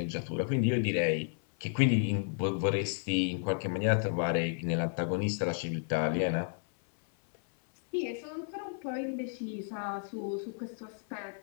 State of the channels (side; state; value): right; silent; 56 dB below the other